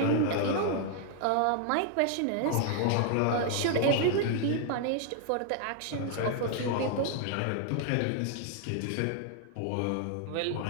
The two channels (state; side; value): different; both; correlation 0.00